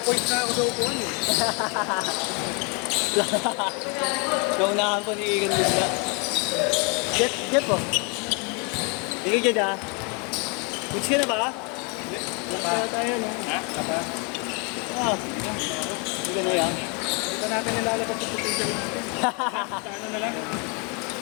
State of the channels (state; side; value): quieter; right; 33.6 dB